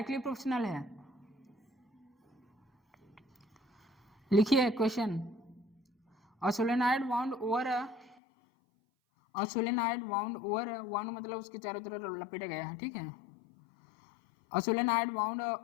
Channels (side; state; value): right; drops out; at 8.2 s